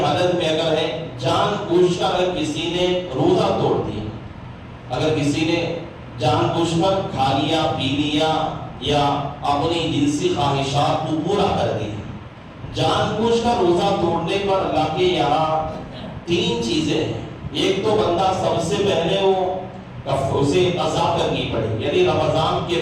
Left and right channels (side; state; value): both; identical; correlation 1.00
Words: میں اگر ہے، جان بوجھ کر اگر کسی نے روزہ توڑ دیا، اگر کسی نے جان بوجھ کر کھا لیا، پی لیا یا اپنی جنسی خواہشات کو پورا کر دیا، جان بوجھ کر روزہ توڑنے پر اللہ کے یہاں تین چیزیں ہیں۔ ایک تو بندہ سب سے پہلے اسے قضا کرنی پڑے، یعنی رمضان کے